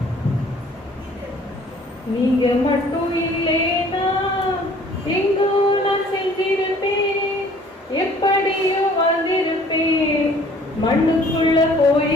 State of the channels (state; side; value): normal; both; correlation 0.54